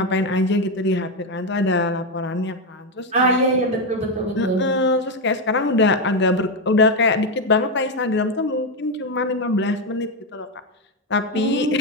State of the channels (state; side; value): normal; both; correlation 0.08